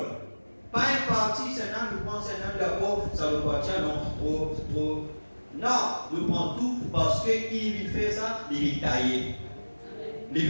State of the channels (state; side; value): inverted; both; correlation -1.00